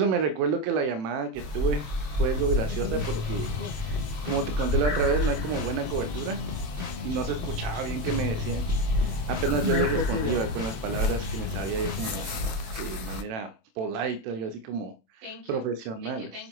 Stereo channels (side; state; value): left; late; 27 ms